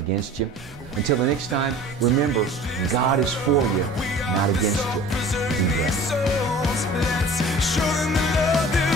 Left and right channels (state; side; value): normal; both; correlation 0.44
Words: you. Until the next time, remember, God is for you, not against you. Be blessed.